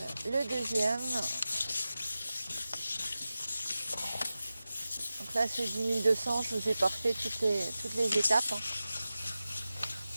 le deuxième. Donc là c'est 10 200, je vous ai parfait toutes les étapes. Hein.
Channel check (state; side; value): inverted; both; correlation -0.94